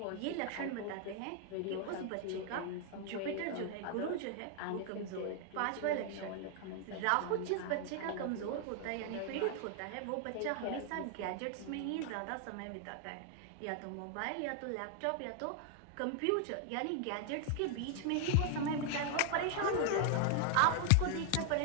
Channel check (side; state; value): both; different; correlation 0.00